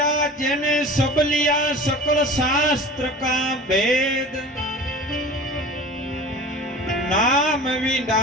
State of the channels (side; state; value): both; normal; correlation 0.39